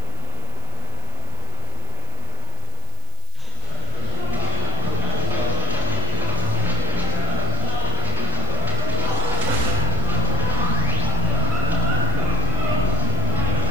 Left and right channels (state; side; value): noise; right; hiss, 22 dB below the sound